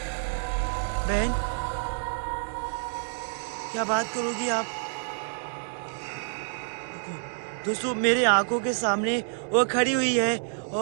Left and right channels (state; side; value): silent; left; 59 dB below the other